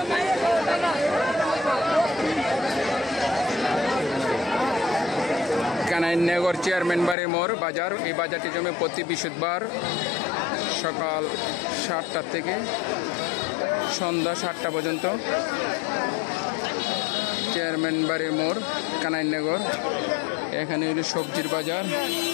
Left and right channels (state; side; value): drops out; right; at 7.2 s